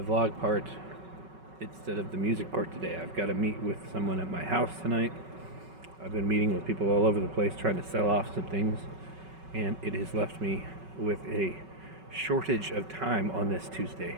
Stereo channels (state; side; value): late; left; 5.3 ms